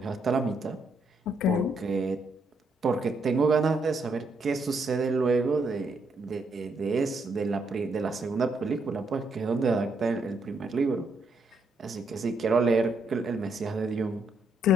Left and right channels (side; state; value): both; normal; correlation 0.77